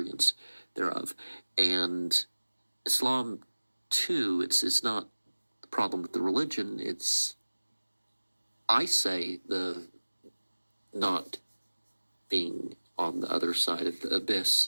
thereof. And Islam, too, it's not the problem with the religion. It's, I say, the not being on the other side of the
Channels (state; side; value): inverted; both; correlation -1.00